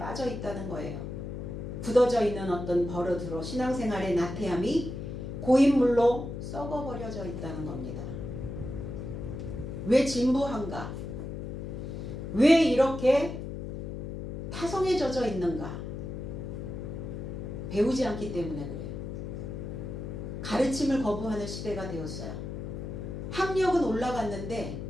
있다는 거예요. 굳어져 있는 어떤 버릇으로 신앙생활의 나태함이 고인물로 썩어버려져 있다는 겁니다. 왜 진부한가? 왜 이렇게 타성에 젖어 있는가? 배우지 않기 때문에 그래요. 가르침을 거부하는 시대가 되었어요. 학력은 올라갔는데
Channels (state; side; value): noise; left; hum, 6 dB below the sound